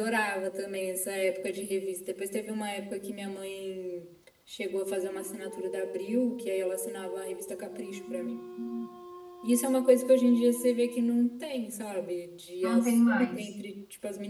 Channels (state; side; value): identical; both; correlation 1.00